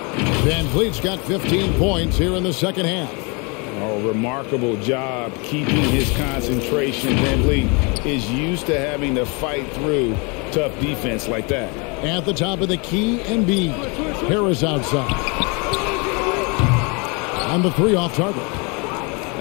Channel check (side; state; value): right; quieter; 31.2 dB